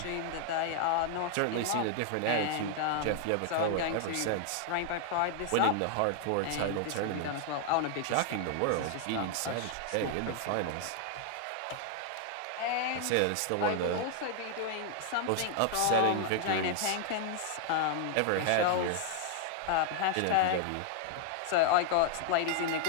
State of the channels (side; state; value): both; different; correlation 0.00